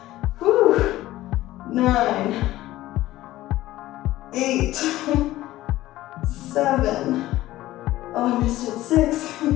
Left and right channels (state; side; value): quieter; right; 15.9 dB